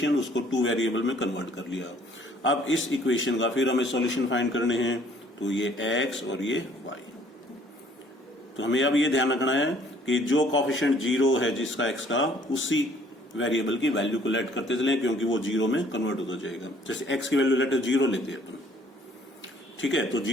उसको 2 वेरिएबल में कन्वर्ट कर लिया। अब इस इक्वेशन का फिर हमें सॉल्यूशन फाइंड करने हैं, तो ये x और ये y। तो हमें अब ये ध्यान रखना है कि जो कोएफिशिएंट 0 है जिसका x का, उसी वेरिएबल की वैल्यू को लेट करते चलें क्योंकि वो 0 में कन्वर्ट होता जाएगा। जैसे x की वैल्यू लेट 0 लेते हैं अपन, ठीक है, तो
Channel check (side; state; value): both; normal; correlation 0.59